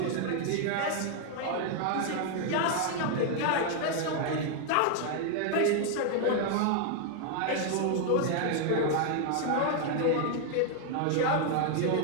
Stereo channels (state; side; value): different; both; correlation 0.00